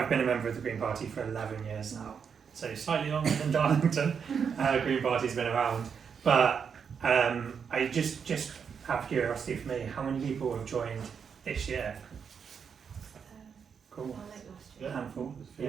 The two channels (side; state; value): left; quieter; 6.7 dB